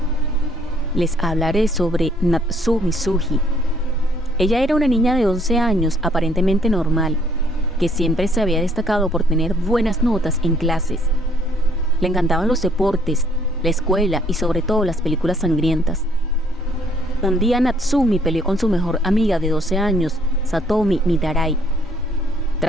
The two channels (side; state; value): both; normal; correlation 0.64